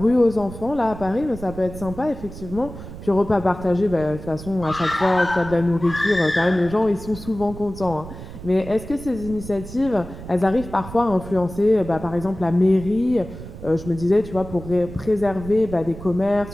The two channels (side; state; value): right; noise; rumble, 13 dB below the sound